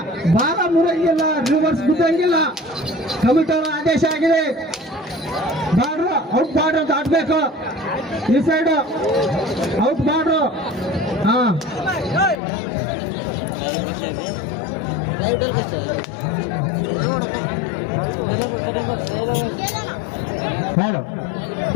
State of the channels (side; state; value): right; drops out; at 12.4 s